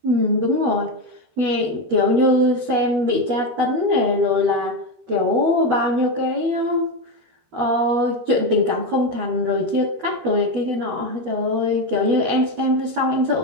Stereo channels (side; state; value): left; late; 13 ms